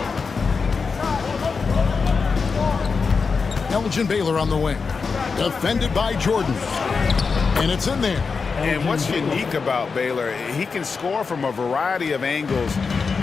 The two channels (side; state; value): right; quieter; 5.0 dB